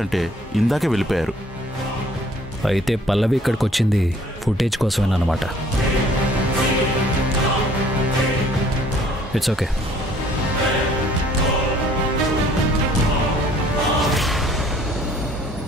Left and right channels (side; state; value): both; normal; correlation 0.58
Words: ఇందాకే వెళ్ళిపోయారు. అయితే పల్లవి ఇక్కడికి వచ్చింది ఫుటేజ్ కోసమేనమాట. It's okay.